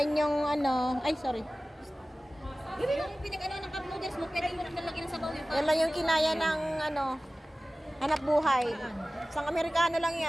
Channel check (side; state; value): both; normal; correlation 0.97